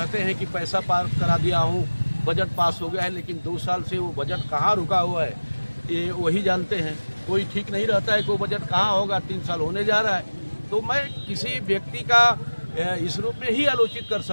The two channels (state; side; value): inverted; both; correlation -1.00